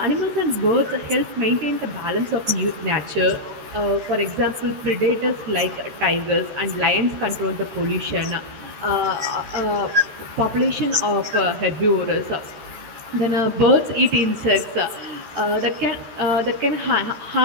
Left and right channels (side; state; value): left; late; 13 ms